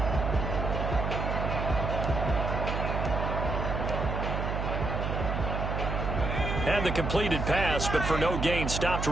And the completed pass, but for no gain, stopped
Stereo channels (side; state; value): right; noise; hum, 2 dB below the sound